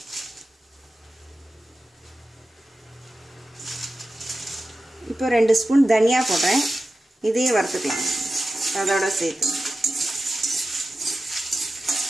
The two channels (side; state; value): both; normal; correlation 0.94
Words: இப்போ 2 ஸ்பூன் தனியா போடுறேன். இதையும் வறுத்துக்கலாம் அதோட சேர்த்து.